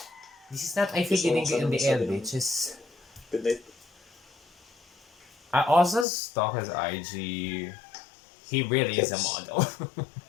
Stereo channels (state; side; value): drops out; right; at 6.1 s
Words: This is not I feel lingering in the air, bitches. Good night. I also stalk his IG. He really is a model.